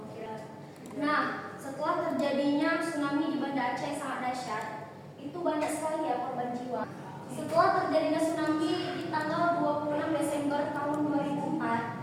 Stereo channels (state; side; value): identical; both; correlation 1.00